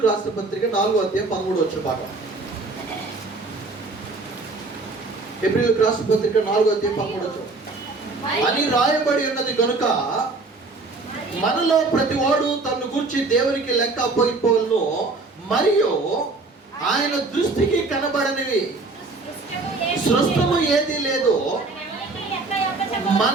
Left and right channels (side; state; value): left; quieter; 3.6 dB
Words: రాసిన పత్రిక 4:13 భాగం. హెబ్రీయులకు రాసిన పత్రిక 4:13 అని రాయబడి ఉన్నది కనుక మనలో ప్రతి వాడు తన గురించి దేవునికి లెక్క అప్పగిపోవలను, మరియు ఆయన దృష్టికి కనబడనివి సృష్టము ఏది లేదు.